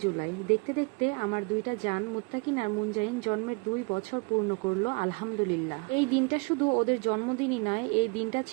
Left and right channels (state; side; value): quieter; left; 30.6 dB